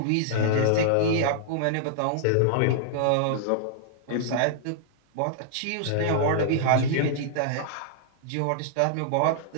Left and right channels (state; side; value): different; both; correlation -0.01